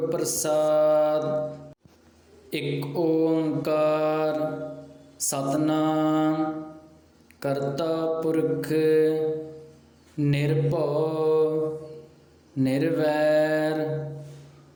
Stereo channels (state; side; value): identical; both; correlation 1.00